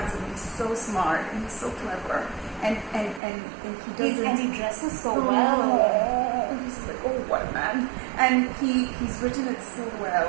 He's so smart. And he's so clever. And he doesn't... And he dresses so well. He's like, oh, what a man. And he's written it so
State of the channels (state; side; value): drops out; left; at 3.2 s